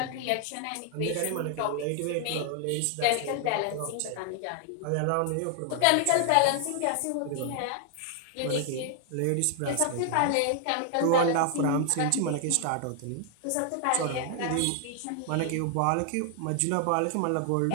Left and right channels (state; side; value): different; both; correlation 0.00